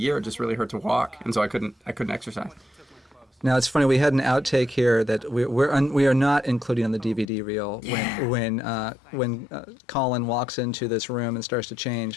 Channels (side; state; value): right; drops out; at 7.2 s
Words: it just really hurt to walk, and so I couldn't exercise. Now it's funny. We had an outtake here that we are not including on the DVD reel when Colin walks into this room and starts to